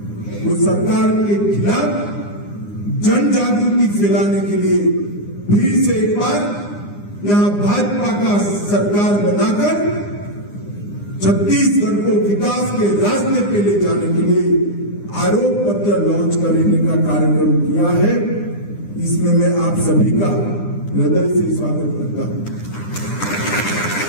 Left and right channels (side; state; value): right; late; 9.8 ms